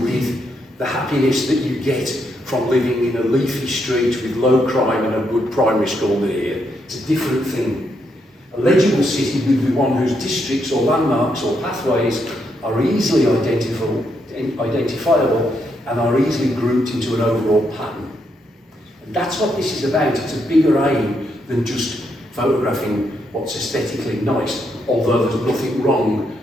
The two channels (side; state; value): both; normal; correlation 0.78